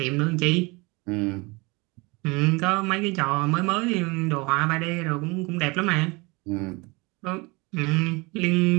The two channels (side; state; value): left; quieter; 25.9 dB